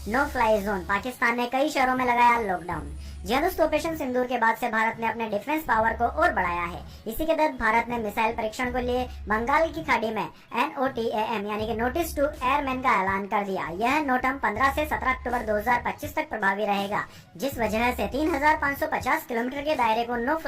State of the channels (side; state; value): both; identical; correlation 1.00